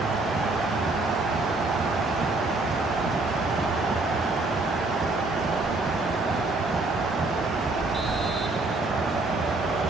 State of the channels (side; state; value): left; quieter; 3.2 dB